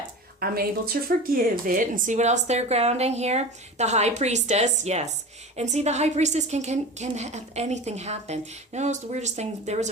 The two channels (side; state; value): both; normal; correlation 0.32